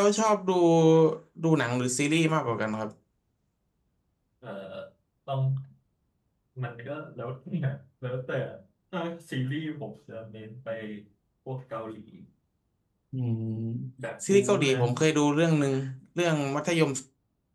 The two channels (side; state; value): both; identical; correlation 1.00